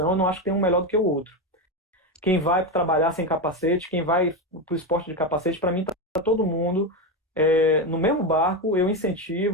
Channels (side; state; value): both; normal; correlation 0.13